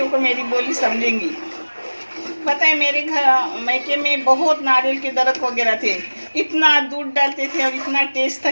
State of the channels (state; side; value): inverted; both; correlation -1.00